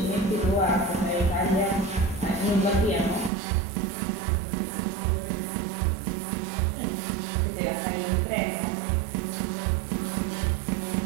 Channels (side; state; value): left; drops out; at 3.3 s